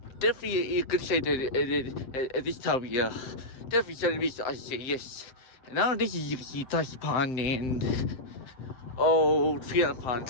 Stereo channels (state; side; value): late; right; 7.7 ms